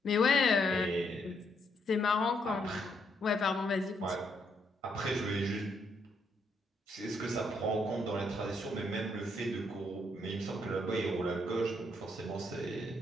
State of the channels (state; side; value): normal; both; correlation 0.74